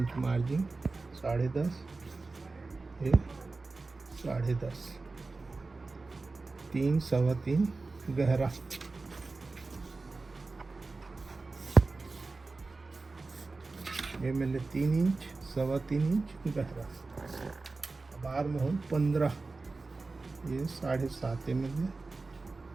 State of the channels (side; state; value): left; quieter; 3.7 dB